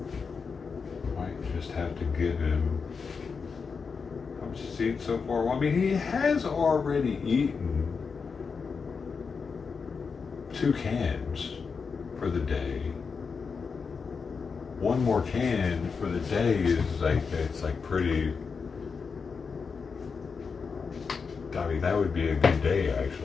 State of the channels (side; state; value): right; quieter; 5.4 dB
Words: Have to give him how much he's eaten so far. Well, I mean, he has already eaten 2 cans for the day. one more can for the day is like, it's like pretty, I mean, that would be a good day